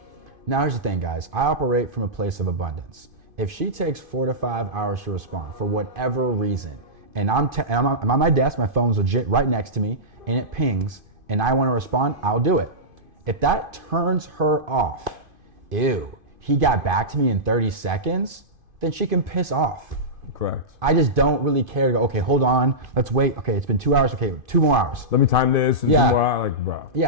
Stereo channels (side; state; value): left; late; 2.5 ms